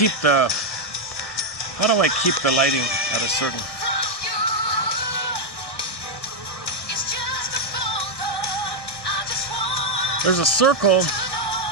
the lighting at a certain... There's a circle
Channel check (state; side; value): late; right; 1.7 ms